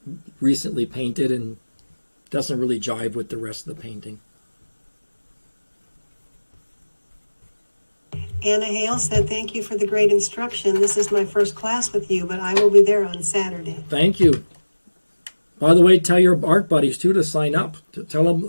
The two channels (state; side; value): inverted; both; correlation -1.00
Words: recently painted and doesn't really jive with the rest of the painting. Anna Hale said, thank you for the great instruction. This is my first class with you, but I will be there on Saturday. Thank you. By the way, tell your art buddies, too, to sign up. Tell